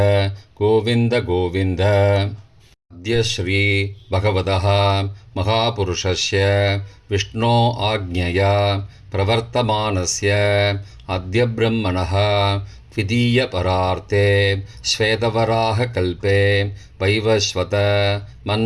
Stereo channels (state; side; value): identical; both; correlation 1.00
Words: गोविन्द गोविन्द. अद्य श्री भगवतः महापुरुषस्य विष्णो आज्ञया प्रवर्तमानस्य अद्य ब्रह्मणः द्वितीयपरार्थे श्वेतवराहकल्पे वैवस्वत